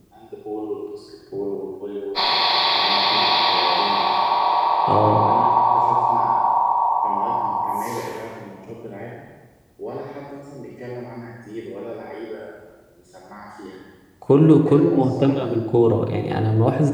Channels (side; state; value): both; identical; correlation 1.00